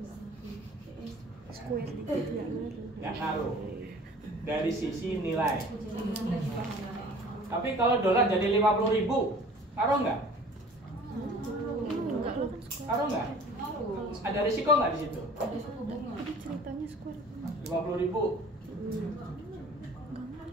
Nggak ngaruh dari sisi nilai. Tapi kalau dolar jadi 50.000, ngaruh nggak? Ngaruh nggak? Ada risiko nggak di situ? Ceritanya square 50.000.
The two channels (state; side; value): normal; both; correlation 0.47